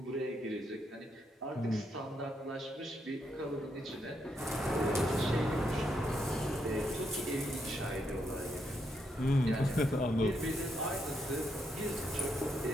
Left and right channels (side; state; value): both; normal; correlation 0.78